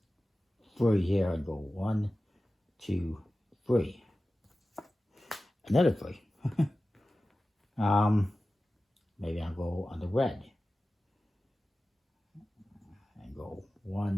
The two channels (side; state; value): both; normal; correlation 0.95